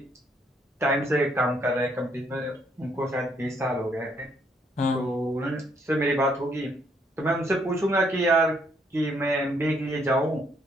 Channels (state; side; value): normal; both; correlation 0.70